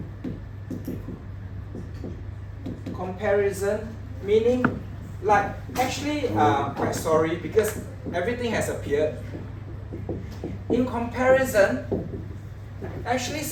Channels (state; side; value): identical; both; correlation 1.00